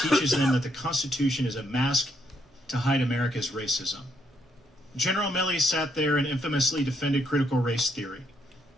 them that the Constitution is a mask to hide America's racism. General Milley sat there and infamously defended critical race theory,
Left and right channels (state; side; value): normal; both; correlation 0.74